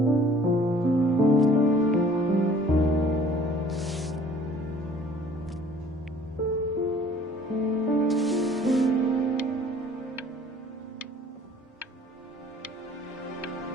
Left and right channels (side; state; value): both; normal; correlation 0.53